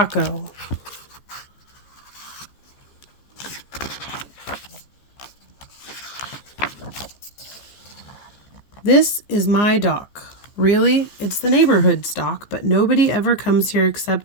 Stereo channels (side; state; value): right; late; 15 ms